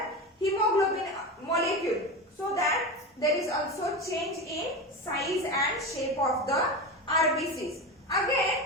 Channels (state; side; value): normal; both; correlation 0.23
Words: hemoglobin molecule, so that there is also change in size and shape of the RBCs.